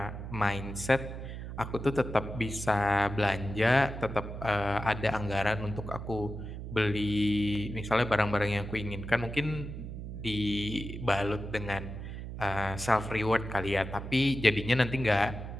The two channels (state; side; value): noise; right; hum, 8 dB below the sound